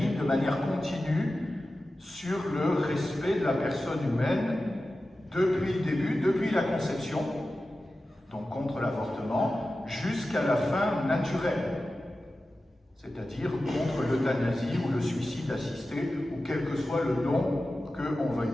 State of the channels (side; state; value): both; normal; correlation 0.94